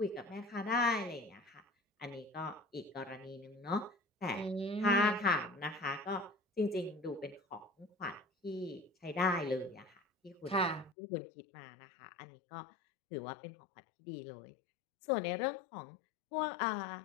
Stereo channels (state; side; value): drops out; right; at 11.0 s